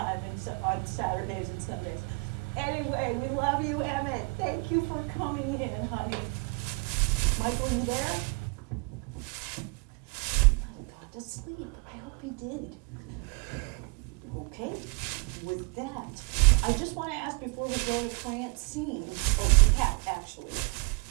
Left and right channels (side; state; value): left; quieter; 32.4 dB